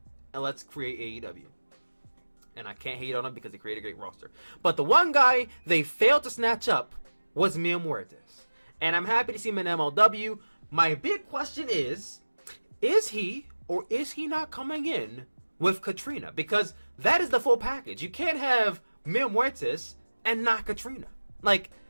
and let's create AEW. And I can't hate on them because they created a great roster. But the one guy they failed to snatch up was Mil Muertes. And I'm happy to see him in MLW. My big question is he or is he not coming in with Katrina? Because that is the full package. You can't have Mil Muertes and not Katrina. Like,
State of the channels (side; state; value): both; inverted; correlation -1.00